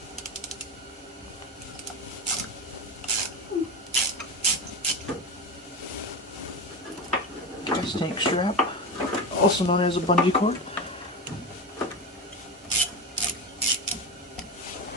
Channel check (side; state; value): both; normal; correlation 0.20